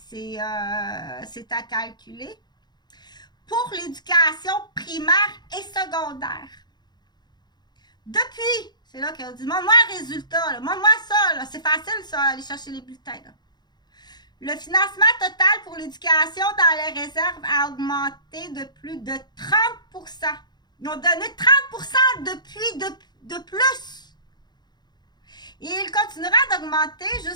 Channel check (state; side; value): late; right; 0.21 ms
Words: à calculer. Pour l'éducation primaire et secondaire. Depuis, c'est là qu'on dit, moi un résultat, là, moi ça, là, c'est facile ça, aller chercher les bulletins, là. Le financement total pour l'éducation dans les réserves a augmenté de plus de 30%. Ils ont donné 30% depuis de plus. Et il continuera d'augmenter